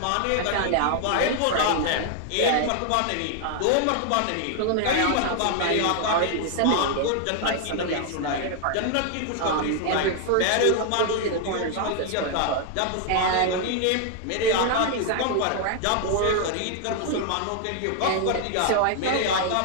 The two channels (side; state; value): both; different; correlation 0.00